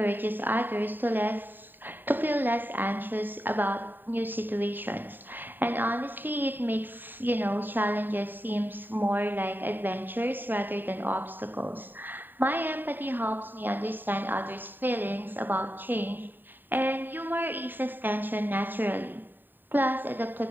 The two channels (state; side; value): late; left; 0.092 ms